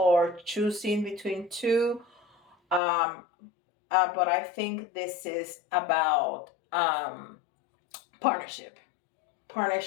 choosing between 2. Um, but I think this is about partnership,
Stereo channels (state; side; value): drops out; right; at 2.8 s